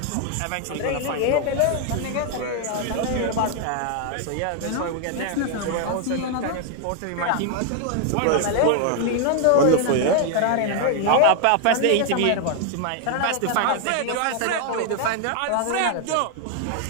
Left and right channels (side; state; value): both; different; correlation 0.00